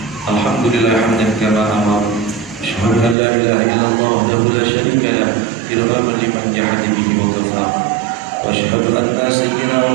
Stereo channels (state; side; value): drops out; left; at 3.2 s